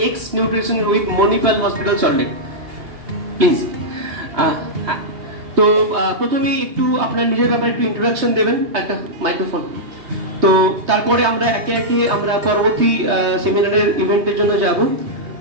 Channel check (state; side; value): late; left; 3.2 ms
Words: x nutrition with Manipal hospital Salt Lake. Please. তো প্রথমেই একটু আপনার নিজের ব্যাপারে একটু ইন্ট্রোডাকশন দেবেন, একটা মাইক্রোফোন। তো তারপরে আমরা একে একে আমরা পরবর্তী সেমিনারের ইভেন্টের জন্য যাব।